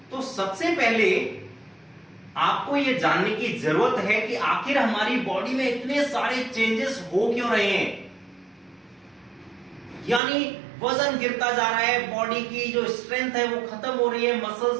तो सबसे पहले आपको यह जानने की जरूरत है कि आखिर हमारी बॉडी में इतने सारे चेंजेस हो क्यों रहे हैं। यानी वजन गिरता जा रहा है, बॉडी की जो स्ट्रेंथ है वो खत्म हो रही है,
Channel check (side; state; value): left; drops out; at 10.2 s